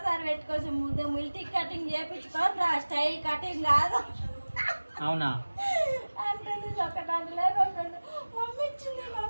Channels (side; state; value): both; inverted; correlation -1.00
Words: పెట్టుకోవచ్చు. మిల్టీ కటింగ్ చేపించుకొని రా, స్టైల్ కటింగ్ కాదు. అవునా? అంటుంది ఒకటంటే మమ్మీ